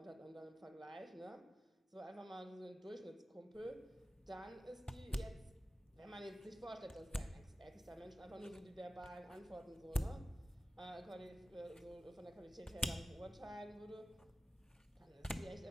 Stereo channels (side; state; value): both; normal; correlation 0.94